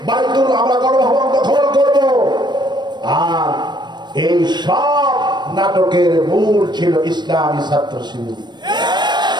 বাইতুল আমরা গণভবন দখল করব। আর এই সব নাটকের মূল ছিল ইসলামী ছাত্র শিবির,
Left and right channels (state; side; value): late; left; 0.21 ms